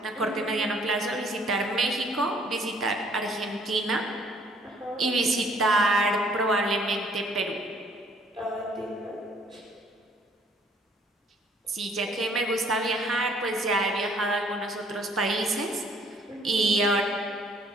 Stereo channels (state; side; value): normal; both; correlation 0.60